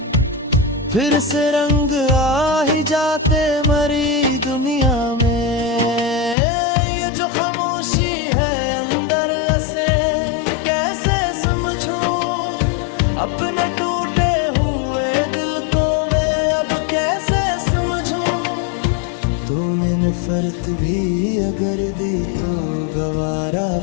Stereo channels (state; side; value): drops out; right; at 6.4 s